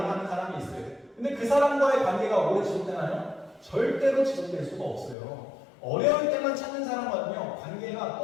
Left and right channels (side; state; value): right; drops out; at 5.2 s